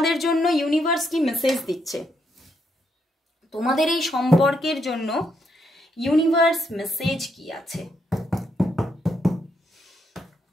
জন্য ইউনিভার্স কি মেসেজ দিচ্ছে। তোমাদের এই সম্পর্কের জন্য ইউনিভার্স মেসেজ কি আছে?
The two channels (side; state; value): both; normal; correlation 0.77